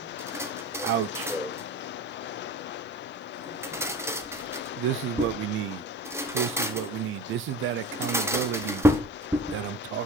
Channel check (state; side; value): normal; both; correlation 0.36